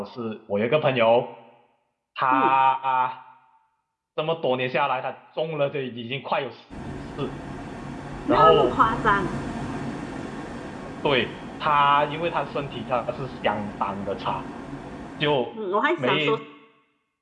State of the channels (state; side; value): identical; both; correlation 1.00